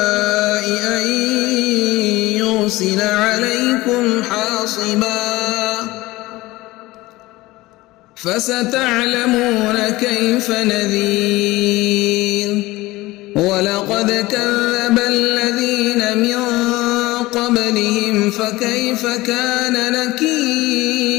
أن يرسل عليكم حاصبا فستعلمون كيف نذير. ولقد كذب الذين من قبلهم فكيف كان نكير.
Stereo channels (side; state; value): right; quieter; 19.4 dB